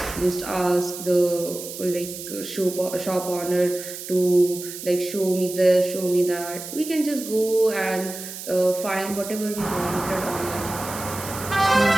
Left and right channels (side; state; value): right; noise; hiss, 10 dB below the sound